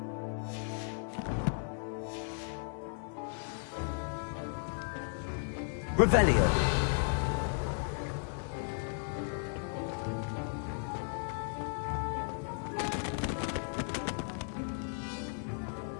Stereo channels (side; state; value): right; silent; 54 dB below the other